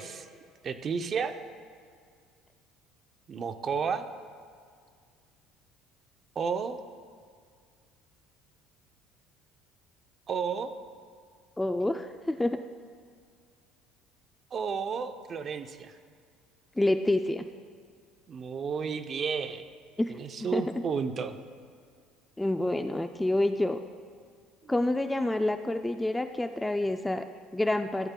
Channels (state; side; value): normal; both; correlation 0.88